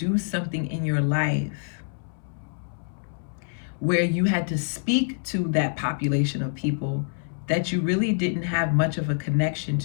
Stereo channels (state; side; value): silent; right; 61 dB below the other